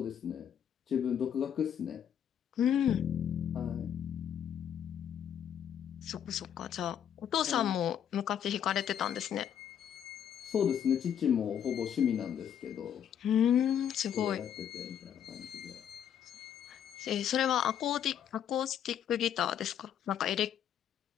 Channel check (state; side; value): quieter; right; 9.2 dB